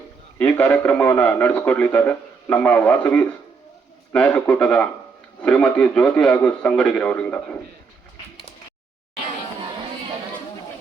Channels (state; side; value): quieter; left; 5.1 dB